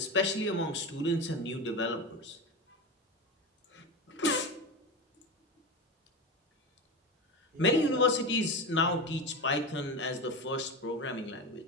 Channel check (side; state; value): both; normal; correlation 0.22